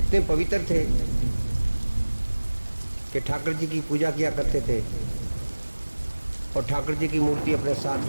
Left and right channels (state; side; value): inverted; both; correlation -1.00